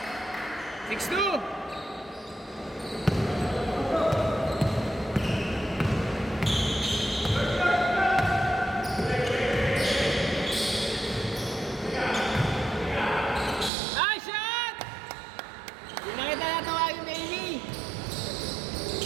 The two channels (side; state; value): left; drops out; at 13.7 s